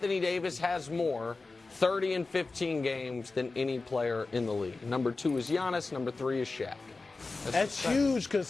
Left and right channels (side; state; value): right; quieter; 3.7 dB